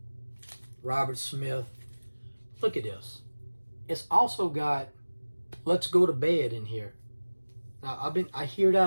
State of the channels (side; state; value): both; inverted; correlation -1.00